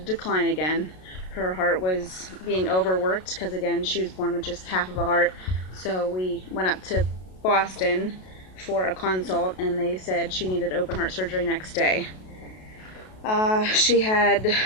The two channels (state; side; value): late; right; 32 ms